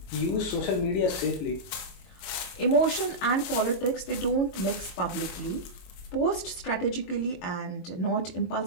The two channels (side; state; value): right; late; 22 ms